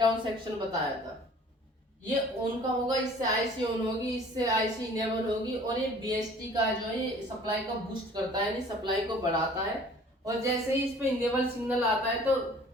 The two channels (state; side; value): normal; both; correlation 0.50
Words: डाउन सेक्शन बताया था। ये ऑन का होगा, इससे आईसी ऑन होगी, इससे आईसी इनेबल होगी, और ये बीएसटी का जो है सप्लाई को बूस्ट करता है, यानी सप्लाई को बढ़ाता है। और जैसे ही इस पे इनेबल सिग्नल आता है तो